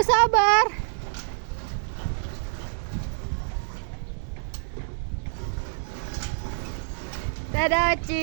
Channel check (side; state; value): left; silent; digital silence